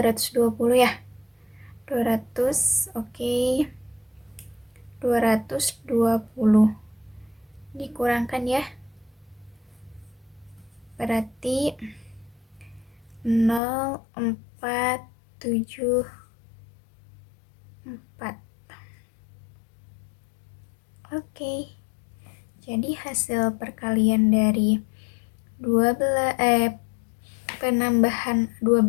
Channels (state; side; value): drops out; right; at 13.6 s